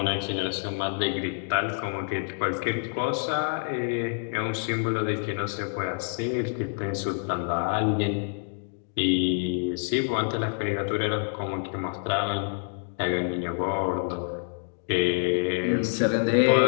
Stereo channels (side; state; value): right; silent; digital silence